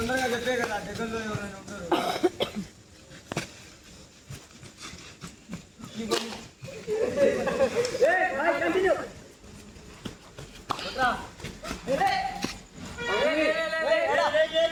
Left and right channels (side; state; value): both; identical; correlation 1.00